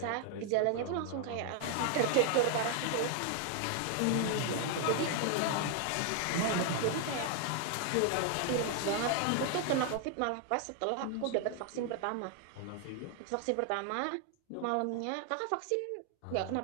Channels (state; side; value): different; both; correlation 0.00